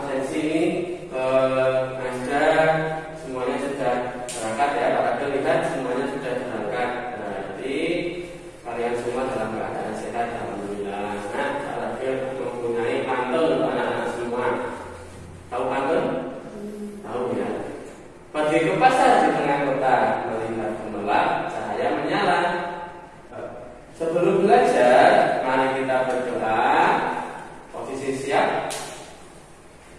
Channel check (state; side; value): identical; both; correlation 1.00